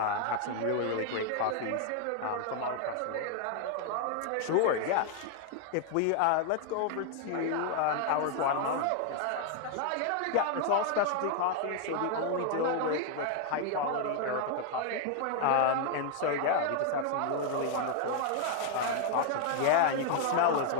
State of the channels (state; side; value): different; both; correlation 0.00